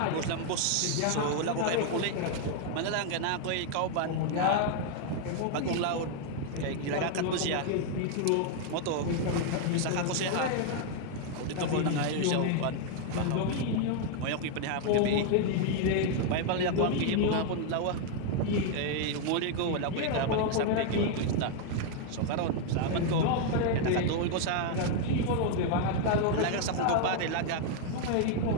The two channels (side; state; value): both; different; correlation 0.00